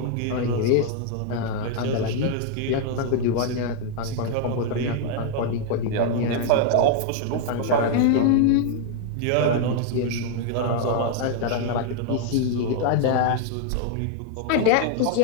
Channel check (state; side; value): different; both; correlation 0.00